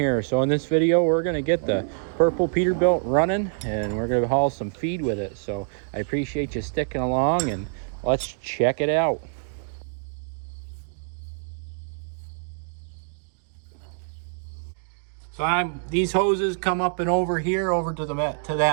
So in this video, we're gonna get the purple Peterbilt running and we're gonna haul some feed with it. So I appreciate you sticking along and let's check it out. So these hoses come up and over here, over to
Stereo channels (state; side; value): silent; left; digital silence